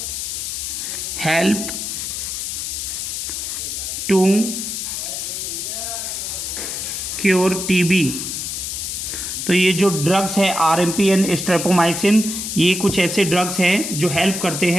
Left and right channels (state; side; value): noise; left; hiss, 4 dB below the sound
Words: help to cure TB. तो ये जो ड्रग्स हैं RMP एंड स्ट्रेप्टोमाइसिन, ये कुछ ऐसे ड्रग्स हैं जो हेल्प करते